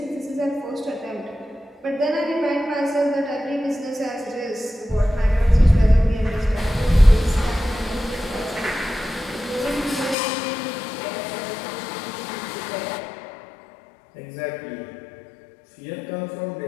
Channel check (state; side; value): drops out; right; at 10.2 s